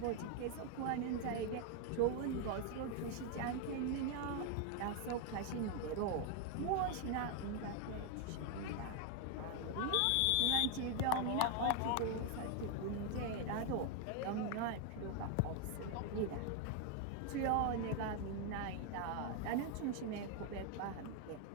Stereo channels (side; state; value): both; different; correlation 0.01